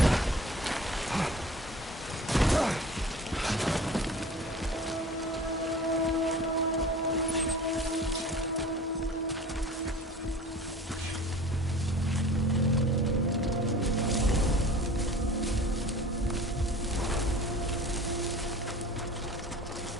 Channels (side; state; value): both; normal; correlation 0.42